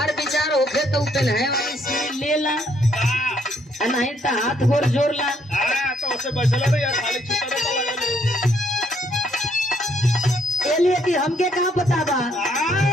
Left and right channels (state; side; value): normal; both; correlation 0.69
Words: विचार होखे तो पहनाए वाली सुई ले ला, नहीं तो हाथ गोर जोड़ ला। तो उससे बचला नहीं यार, खाली छुट्टा लिए कि हमके कहाँ पता बा।